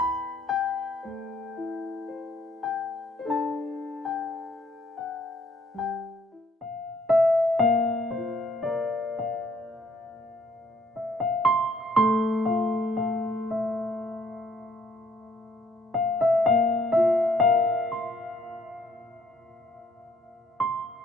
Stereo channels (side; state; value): both; normal; correlation 0.64